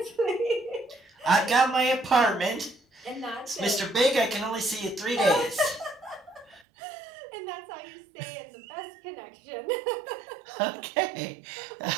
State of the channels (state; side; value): drops out; left; at 6.7 s